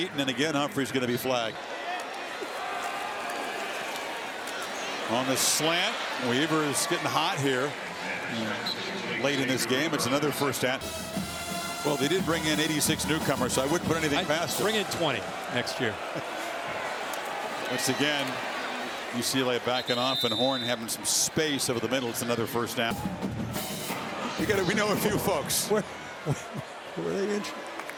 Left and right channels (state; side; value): identical; both; correlation 1.00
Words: and again Humphrey's going to be flagged. On the slant, Weaver is getting hot here late in this game. It's another 1st down. Well, they did bring in 86 newcomers, so I wouldn't put anything past them. Bring in 20 next year. Once again, UCLA backing off, and Horn having some space over the middle. It's another 1st down. We know a few folks. Where are they injured?